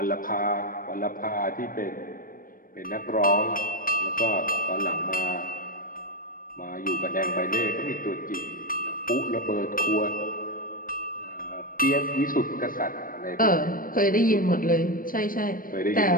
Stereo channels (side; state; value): right; late; 0.41 ms